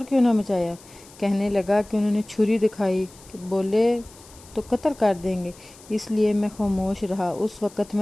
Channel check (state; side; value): noise; left; hiss, 23 dB below the sound